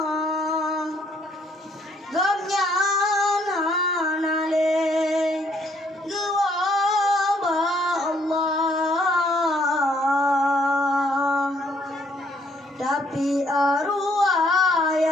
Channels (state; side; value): normal; both; correlation 0.66